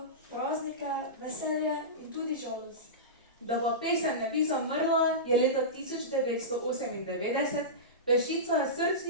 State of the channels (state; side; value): normal; both; correlation -0.18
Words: praznike, veselje in tudi žalost. Da pa pesem ne bi zamrla, je leta 1998 peščica